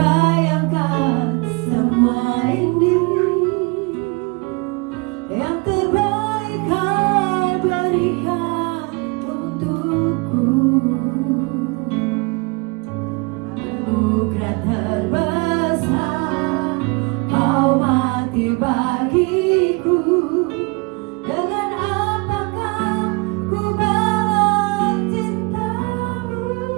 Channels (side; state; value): left; quieter; 28.8 dB